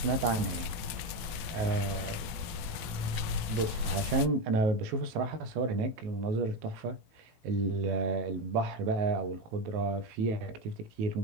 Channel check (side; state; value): left; late; 18 ms